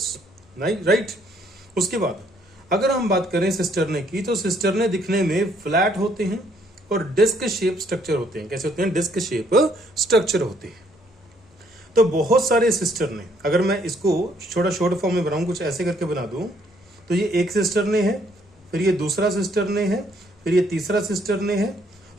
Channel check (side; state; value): both; normal; correlation 0.67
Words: राइट। उसके बाद अगर हम बात करें सिस्टरने की, तो सिस्टरने दिखने में फ्लैट होते हैं और डिस्क शेप स्ट्रक्चर होते हैं। कैसे होते हैं? डिस्क शेप स्ट्रक्चर होते हैं। तो बहुत सारे सिस्टरने, अगर मैं इसको छोटा शॉर्ट फॉर्म में बनाऊं, कुछ ऐसे करके बना दूं, तो ये एक सिस्टरने है, फिर ये दूसरा सिस्टरने है, फिर ये तीसरा सिस्टरने है।